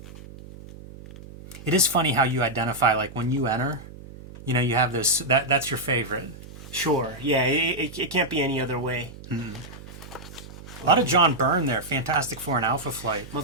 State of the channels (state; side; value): noise; right; hum, 16 dB below the sound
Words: It is funny how you identify, like when you enter, you know, you have this, that's your favorite. Sure. Yeah, it can't be any other way. A lot of John Byrne there, Fantastic Four and Alpha Flight.